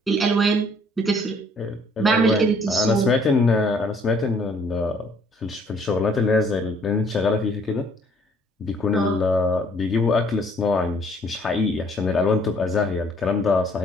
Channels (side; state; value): both; normal; correlation 0.61